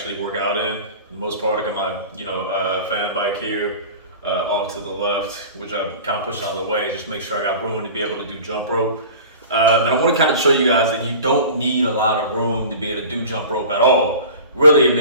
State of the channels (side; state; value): both; inverted; correlation -0.39